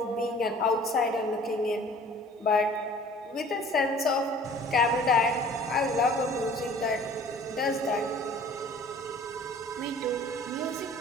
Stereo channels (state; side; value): normal; both; correlation 0.49